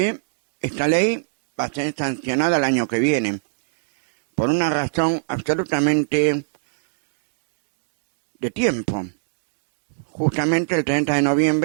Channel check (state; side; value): silent; left; 65 dB below the other